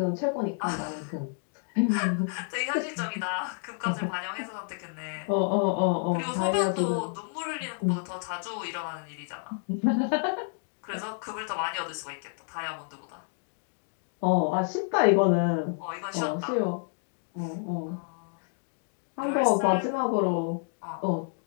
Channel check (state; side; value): silent; right; 58 dB below the other